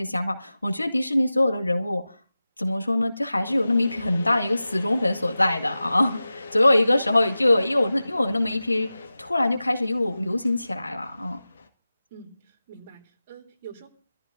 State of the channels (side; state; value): both; inverted; correlation -0.95